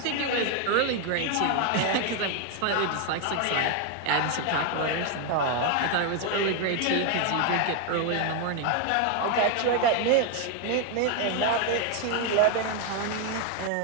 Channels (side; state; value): both; different; correlation 0.01